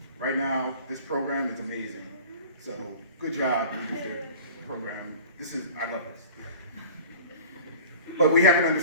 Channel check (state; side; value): inverted; both; correlation -0.41